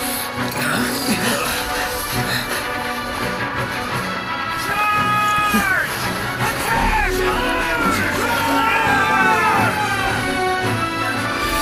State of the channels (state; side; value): identical; both; correlation 1.00